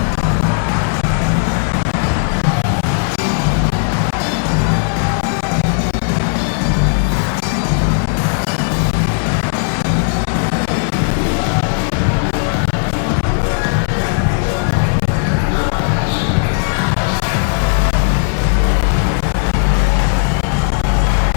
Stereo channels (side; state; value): right; silent; 68 dB below the other